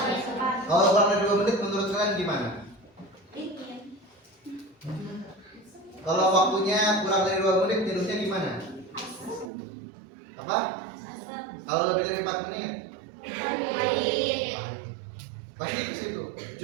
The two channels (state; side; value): drops out; left; at 9.5 s